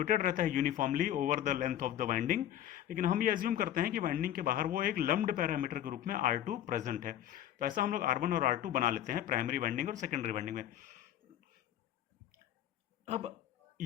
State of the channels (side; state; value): right; quieter; 11.6 dB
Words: रहता है uniformly over the length of the winding. लेकिन हम ये अज्यूम करते हैं कि वाइंडिंग के बाहर वो एक लम्ब्ड पैरामीटर के रूप में R2 प्रेजेंट है। तो ऐसा हम लोग R1 और R2 बना लेते हैं प्राइमरी वाइंडिंग और सेकेंडरी वाइंडिंग में। अब